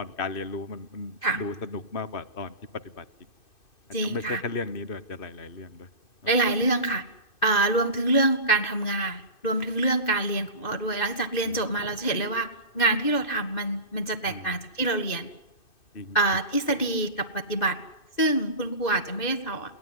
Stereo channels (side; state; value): right; late; 2.6 ms